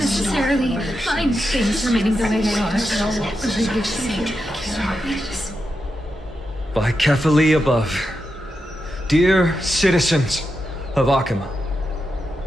Fine things remaining the way they are. By Kefali above, dear citizens of Akama,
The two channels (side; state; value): both; normal; correlation 0.87